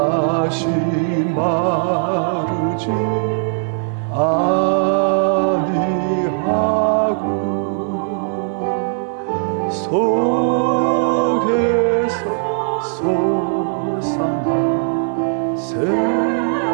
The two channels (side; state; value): left; silent; digital silence